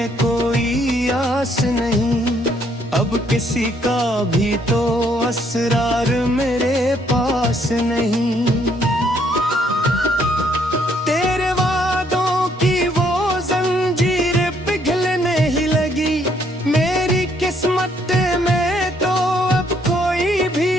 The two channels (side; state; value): both; normal; correlation 0.68